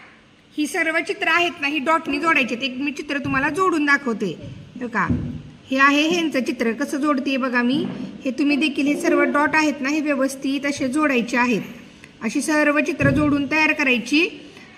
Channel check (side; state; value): both; identical; correlation 1.00